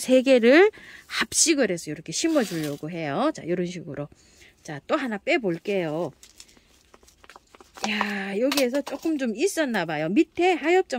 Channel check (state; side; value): identical; both; correlation 1.00